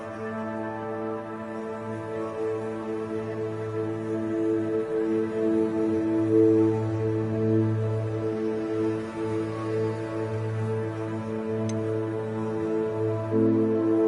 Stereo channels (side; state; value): both; identical; correlation 1.00